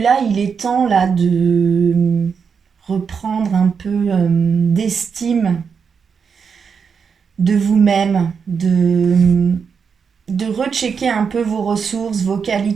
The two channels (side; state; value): left; quieter; 6.1 dB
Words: il est temps là de reprendre un peu d'estime de vous-même, de rechecker un peu vos ressources, vos